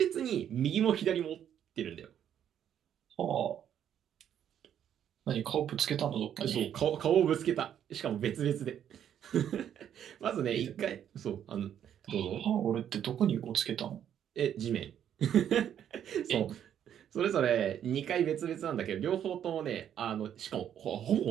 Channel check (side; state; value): left; quieter; 9.7 dB